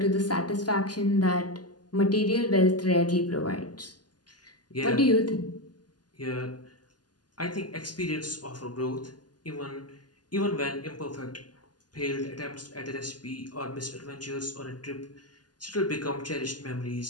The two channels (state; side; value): late; right; 0.70 ms